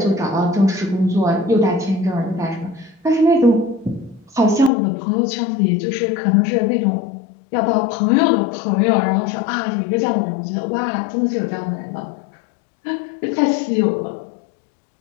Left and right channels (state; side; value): drops out; right; at 4.7 s